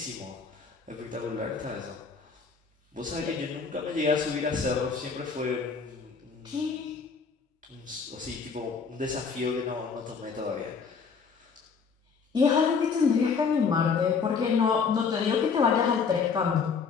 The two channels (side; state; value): right; quieter; 5.5 dB